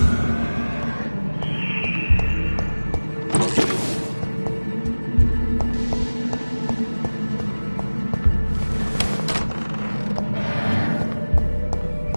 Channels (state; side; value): inverted; both; correlation -1.00